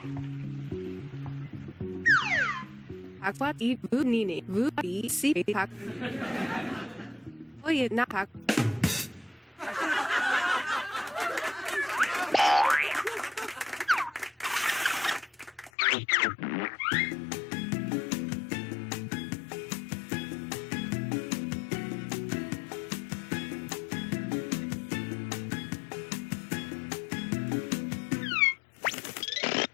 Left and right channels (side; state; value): right; drops out; at 15.7 s